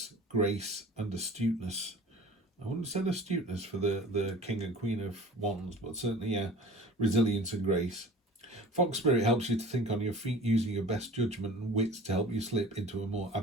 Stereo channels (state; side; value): normal; both; correlation 0.43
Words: grace, and astuteness. I wouldn't have said astuteness for the King and Queen of Wands, but certainly, yeah, resilience and grace. Fox spirit helps you to think on your feet using your best judgment and wits to help you slip into a more